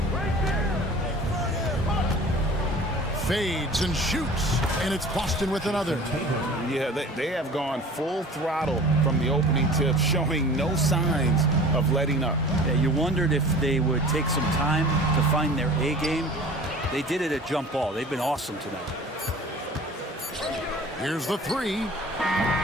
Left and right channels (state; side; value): normal; both; correlation 0.43